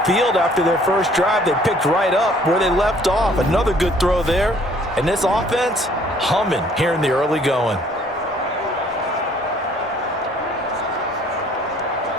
field after their first drive. They picked right up where they left off. Another good throw there. And this offense, humming here in the early going.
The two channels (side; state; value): both; normal; correlation 0.58